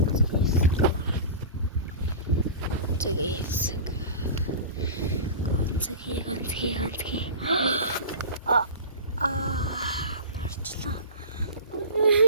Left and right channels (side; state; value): both; inverted; correlation -0.32